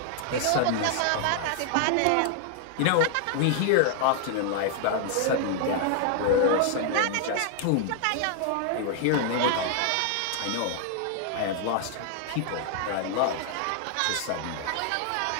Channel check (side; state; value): both; different; correlation 0.00